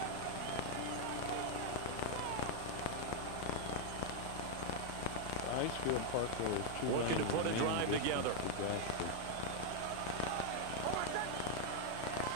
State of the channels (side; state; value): both; different; correlation 0.00